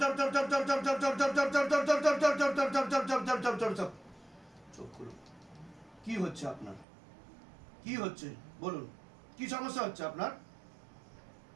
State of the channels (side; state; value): left; drops out; at 6.9 s